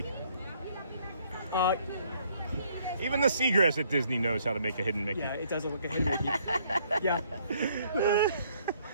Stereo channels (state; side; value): inverted; both; correlation -0.65